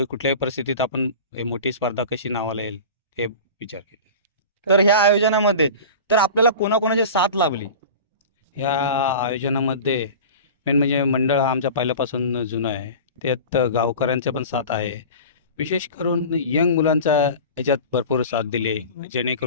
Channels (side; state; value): both; inverted; correlation -0.35